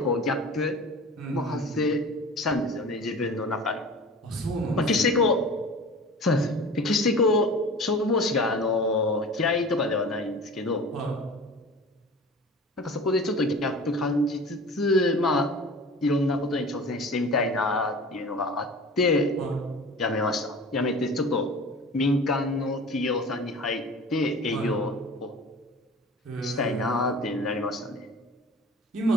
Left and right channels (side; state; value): both; normal; correlation 0.38